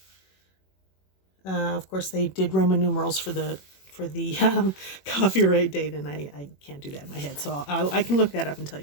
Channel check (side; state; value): right; late; 21 ms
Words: Of course, they did Roman numerals for the copyright date, and I can't do that in my head, so I can look that up and tell you